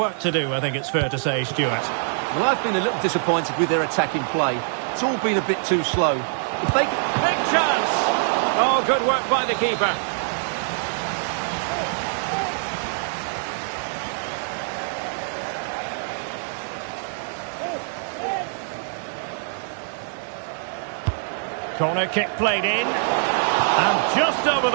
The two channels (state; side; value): silent; left; digital silence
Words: to do, I think it's fair to say, Stuart. Well, I've been a little disappointed with their attacking play. It's all been a bit too slow. If they... Big chance! Oh, good work by the keeper. Corner kick played in. And just over